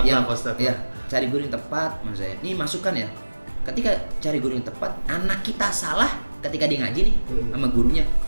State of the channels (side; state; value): both; inverted; correlation -1.00